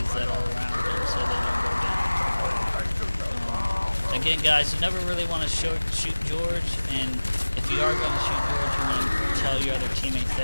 that are around them so they don't go down. Again, guys, you never really want to shoot George, and if you are going to shoot George, you want to tell your other teammates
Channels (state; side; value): inverted; both; correlation -1.00